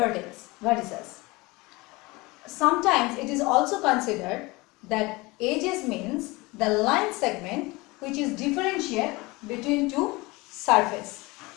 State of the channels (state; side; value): quieter; right; 23.3 dB